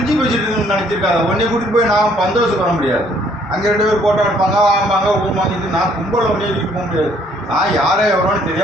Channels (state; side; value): normal; both; correlation 0.63